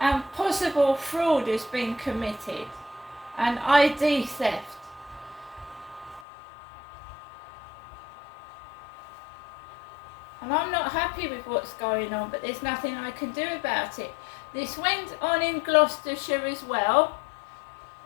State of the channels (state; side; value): drops out; right; at 6.2 s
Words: possible fraud has been committed, and ID theft. And I'm not happy with what's going on, but there's nothing I can do about it. This went on in Gloucestershire as well.